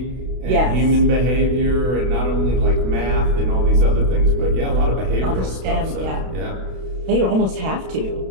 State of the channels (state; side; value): late; left; 32 ms